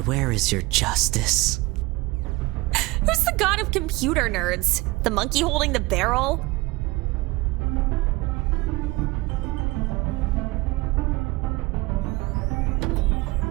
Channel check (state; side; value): quieter; left; 21.6 dB